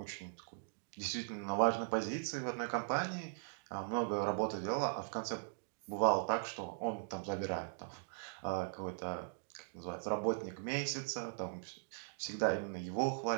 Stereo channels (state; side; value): silent; left; digital silence